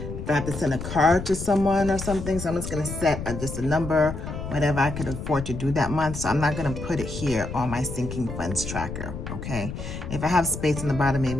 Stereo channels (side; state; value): left; noise; rumble, 7 dB below the sound